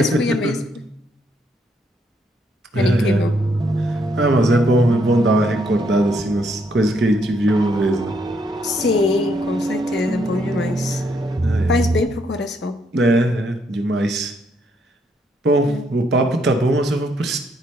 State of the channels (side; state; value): both; normal; correlation 0.73